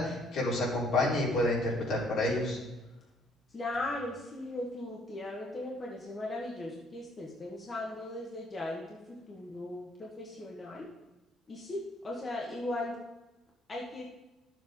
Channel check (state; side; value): normal; both; correlation 0.64